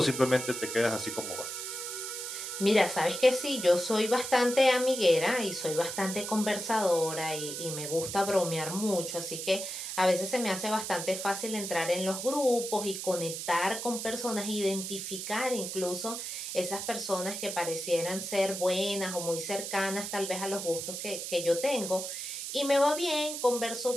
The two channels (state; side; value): noise; right; hiss, 6 dB below the sound